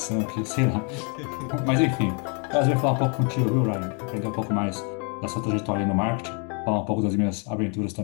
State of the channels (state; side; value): quieter; right; 36.4 dB